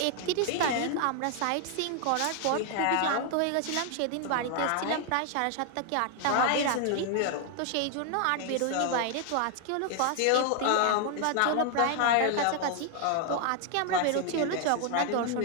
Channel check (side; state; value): both; different; correlation 0.00